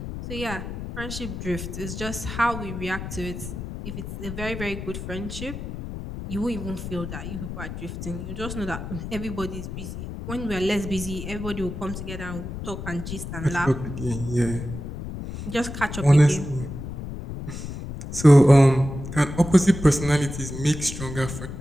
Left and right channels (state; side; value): noise; left; rumble, 8 dB below the sound